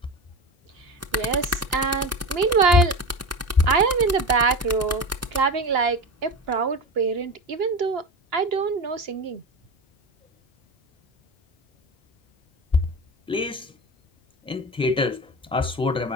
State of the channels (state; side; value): normal; both; correlation 0.26